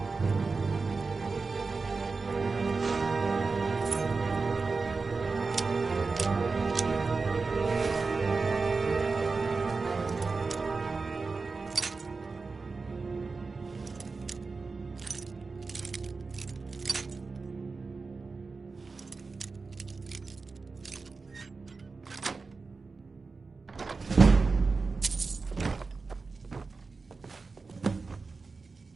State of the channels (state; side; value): quieter; left; 4.2 dB